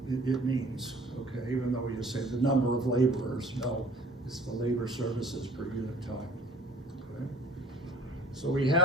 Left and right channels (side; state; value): both; normal; correlation 0.51